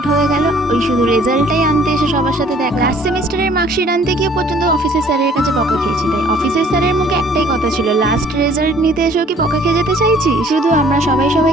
হয়ে গেল। ওই শুধু রেজাল্টটাই আনতে এসে সবার সাথে দেখা। লাস্ট সেমিস্টারের মার্কশিট আনতে গিয়ে পর্যন্ত অফিসের স্যারের কাছে বকা খেয়েছি। তাই অফিসের স্যারের মুখে একটাই কথা ছিল, লাস্ট রেজাল্ট নিতে এসেও কি বকা খেয়ে যেতে চাইছি। শুধু আমরা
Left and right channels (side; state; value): both; normal; correlation 0.56